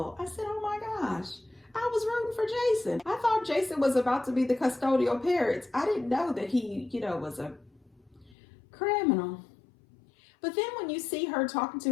I said, oh my gosh, I was rooting for Jason. I thought Jason was about to be the custodial parents. I didn't know that he, was a criminal. But then when you see her talking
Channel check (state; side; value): drops out; right; at 8.3 s